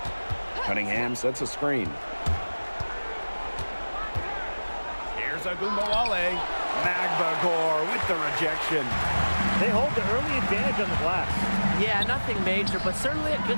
Cunningham sets a screen. Here's Agunmawale. Magbagor with the rejection. They hold the early advantage on the glass. Yeah, nothing major, but certainly a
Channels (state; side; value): inverted; both; correlation -1.00